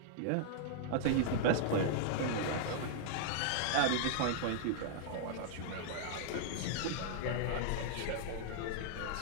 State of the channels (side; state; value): both; different; correlation -0.01